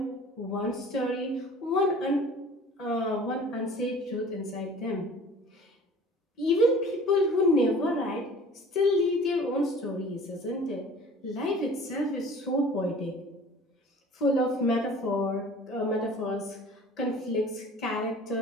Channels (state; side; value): normal; both; correlation 0.46